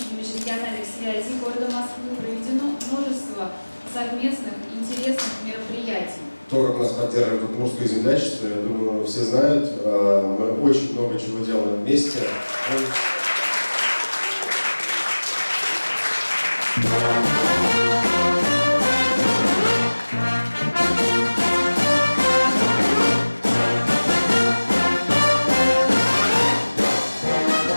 и межрегиональных связей города Москвы проведено множество совместных интересных мероприятий. То, как нас поддерживает Удмуртское землячество, я думаю, все знают. Мы очень много чего делаем вместе.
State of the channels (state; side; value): inverted; both; correlation -1.00